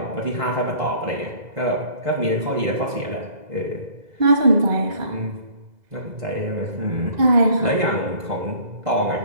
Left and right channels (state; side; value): late; left; 2.0 ms